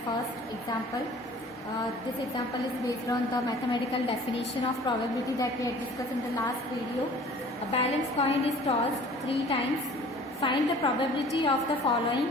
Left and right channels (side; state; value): both; normal; correlation 0.48